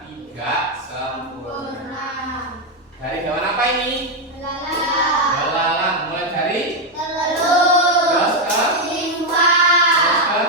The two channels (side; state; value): both; normal; correlation 0.04